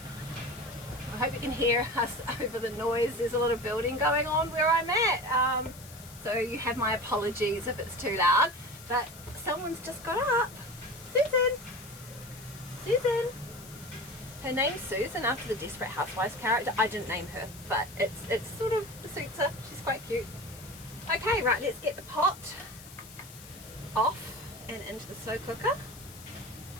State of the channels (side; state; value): left; noise; hiss, 18 dB below the sound